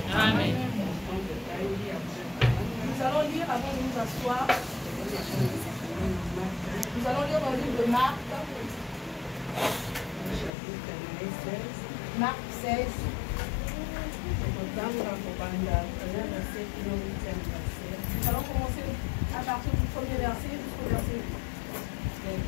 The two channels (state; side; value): drops out; right; at 10.5 s